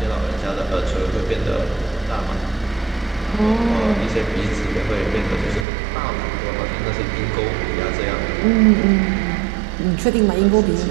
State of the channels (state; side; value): drops out; left; at 5.7 s